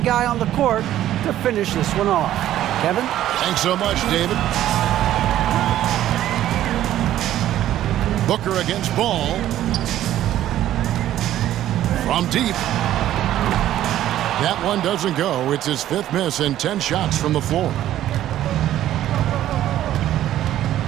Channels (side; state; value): left; quieter; 12.7 dB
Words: guy on the court to finish this one off. Kevin? Thanks so much, David. Booker against Ball. From deep. That one doesn't go. It's his 5th miss and 10 shots from the floor.